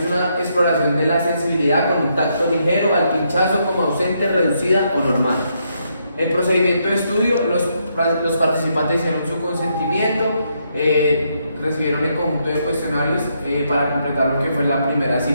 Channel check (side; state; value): both; inverted; correlation -0.77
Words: una exploración de la sensibilidad con un tacto ligero al pinchazo como ausente, reducida o normal. El procedimiento de estudio, los participantes hicieron su consentimiento, recibieron el conjunto de cuestionarios para completar lo que fue la primera